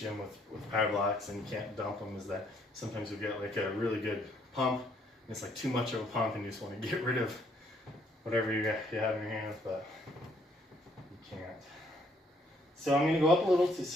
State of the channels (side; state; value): both; normal; correlation 0.67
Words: with power blocks and you can't dump them is that sometimes you get like a really good pump and it's like too much of a pump and you just want to get rid of whatever you have in your hands, but you can't. So I'm going to go up a little to